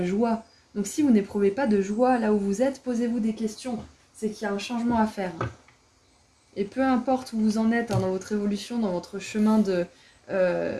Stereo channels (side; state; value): both; identical; correlation 1.00